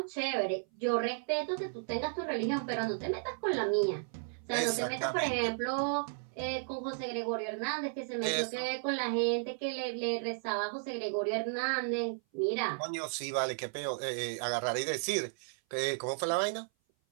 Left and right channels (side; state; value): left; silent; 55 dB below the other